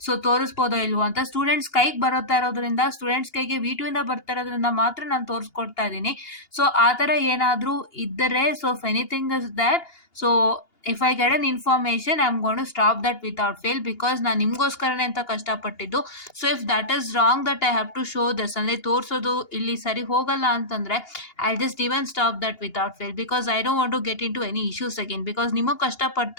So ತೋರಿಸ್ಬೋದೋ ಇಲ್ವೋ ಅಂತ ಸ್ಟೂಡೆಂಟ್ಸ್ ಕೈಗೆ ಬರುತ್ತಾ ಇರೋದ್ರಿಂದ, ಸ್ಟೂಡೆಂಟ್ಸ್ ಕೈಗೆ V2 ಇಂದ ಬರ್ತಾ ಇರೋದ್ರಿಂದ ಮಾತ್ರ ನಾನು ತೋರಿಸ್ಕೊಡ್ತಾ ಇದ್ದೀನಿ. ಸೊ ಆ ಥರ ಏನಾದರೂ ಇದ್ದರೆ, so if anything is that, so if I get an information I am going to stop that without fail, because ನಾನು ನಿಮಗೋಸ್ಕರನೇ ಅಂತ ಕಷ್ಟಪಟ್ಟಿದ್ದು. So if that is wrong that I have to show this, ಅಂದರೆ ತೋರಿಸೋದು ಇಲ್ಲಿ ಸರಿ ಹೋಗಲ್ಲ ಅಂತಂದರೆ I just even stop that without fail, because I don't want to get into any issues again, because ನಿಮಗೆ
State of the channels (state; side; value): late; right; 2.8 ms